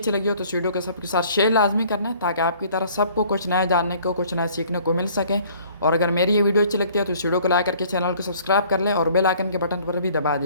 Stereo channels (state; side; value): inverted; both; correlation -0.55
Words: लगी हो तो इस वीडियो को सबके साथ शेयर लाजमी करना है ताकि आपकी तरह सबको कुछ नया जानने को, कुछ नया सीखने को मिल सके। और अगर मेरी ये वीडियो अच्छी लगती है तो इस वीडियो को लाइक करके चैनल को सब्सक्राइब कर ले और बेल आइकन के बटन पर भी दबा